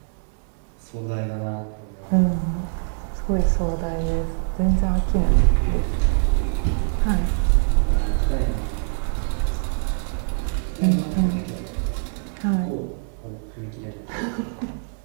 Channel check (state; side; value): silent; left; 63 dB below the other